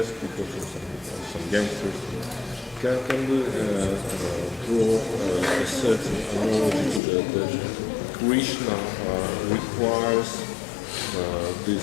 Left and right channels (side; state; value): right; drops out; at 7.0 s